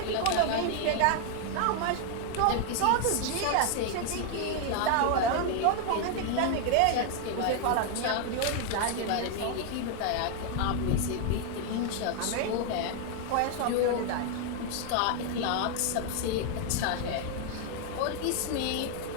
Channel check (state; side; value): different; both; correlation 0.00